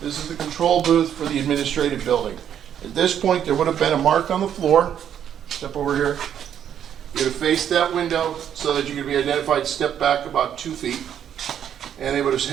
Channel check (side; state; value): left; quieter; 9.4 dB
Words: this is the control booth for the administrative building. At this point, there would have been a mark on the floor. Step over here. You're going to face that window so that you can be identified. Step back about 2 feet. And they would have